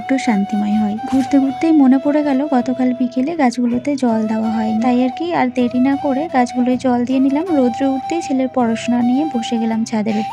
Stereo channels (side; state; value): both; identical; correlation 1.00